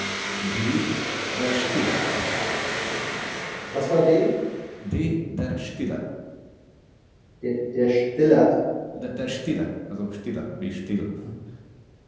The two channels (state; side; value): identical; both; correlation 1.00